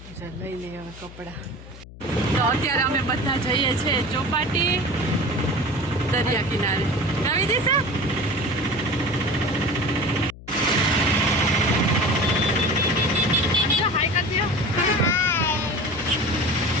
લઈ લઈએ હવે કપડાં. તો અત્યારે અમે બધા જઈએ છીએ ચોપાટી દરિયા કિનારે. આવી દેશે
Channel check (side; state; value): left; noise; hum, 17 dB below the sound